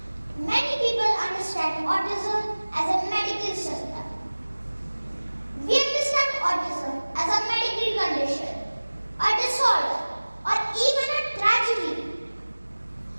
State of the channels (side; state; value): both; inverted; correlation -1.00